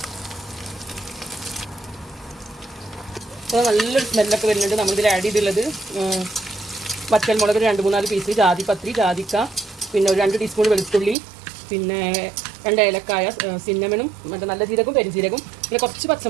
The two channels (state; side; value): drops out; left; at 11.2 s